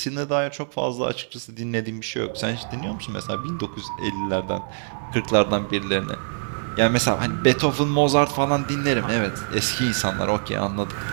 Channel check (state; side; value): silent; left; 63 dB below the other